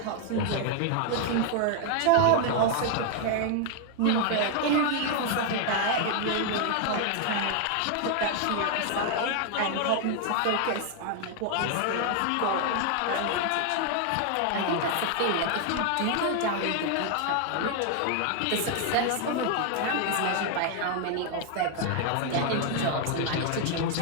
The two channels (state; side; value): different; both; correlation 0.00